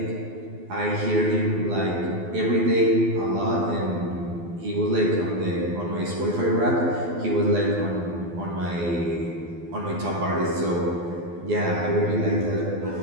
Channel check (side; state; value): left; late; 12 ms